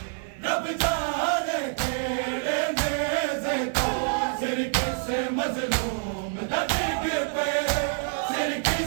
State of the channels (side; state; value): left; silent; 60 dB below the other